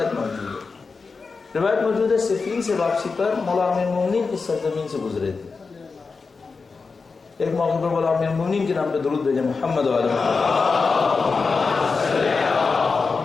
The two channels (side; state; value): right; quieter; 4.6 dB